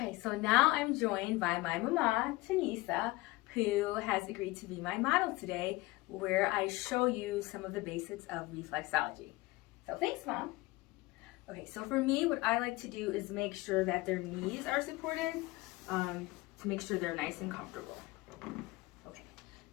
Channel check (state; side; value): quieter; right; 20.8 dB